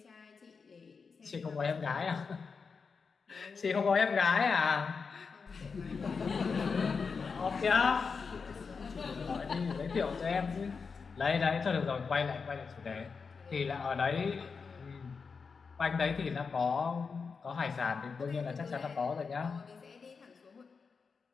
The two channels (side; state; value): right; quieter; 5.2 dB